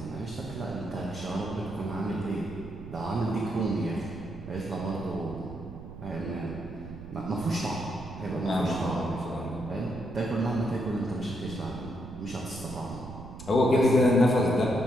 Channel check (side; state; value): right; noise; rumble, 12 dB below the sound